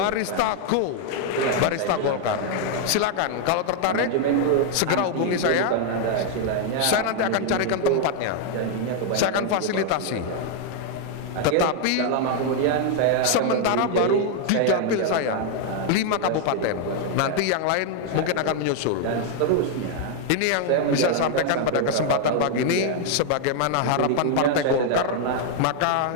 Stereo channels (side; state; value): both; different; correlation 0.00